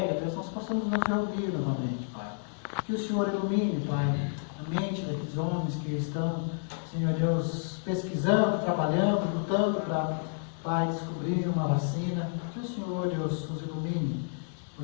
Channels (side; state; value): right; silent; 58 dB below the other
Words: Deus, nós possamos nos reunir novamente, Pai. Que o Senhor ilumine, Pai, a mente daqueles homens que estão, Senhor Deus, pesquisando, trabalhando, lutando para, Pai, descobrir uma vacina. Que o Senhor, Deus, nos ilumine,